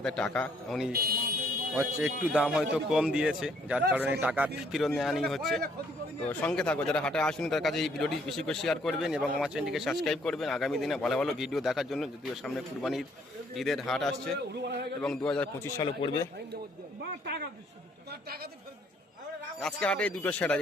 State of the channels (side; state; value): both; normal; correlation 0.66